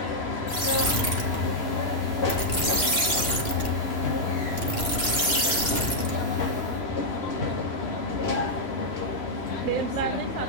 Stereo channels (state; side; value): late; right; 2.9 ms